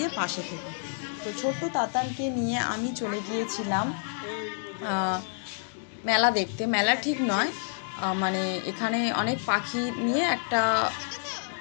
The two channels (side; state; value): right; silent; digital silence